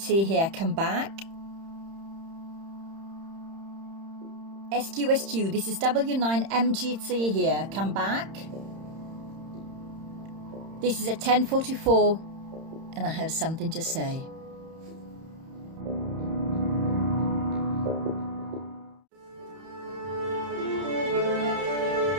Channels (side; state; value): left; late; 31 ms